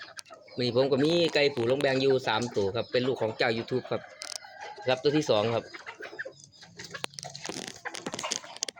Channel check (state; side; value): identical; both; correlation 1.00